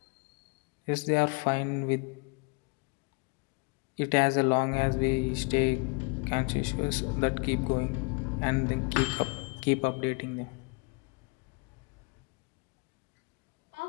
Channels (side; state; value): right; quieter; 29.9 dB